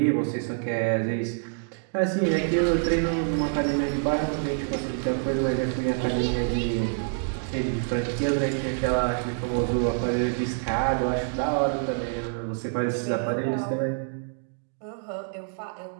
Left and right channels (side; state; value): left; silent; digital silence